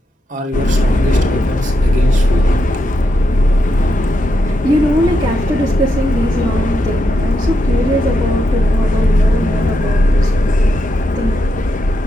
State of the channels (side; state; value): both; normal; correlation 0.83